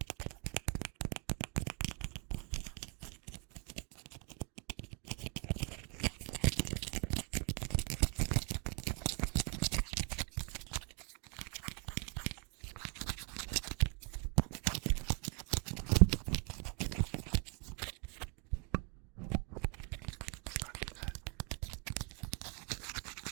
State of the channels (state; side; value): quieter; left; 34.3 dB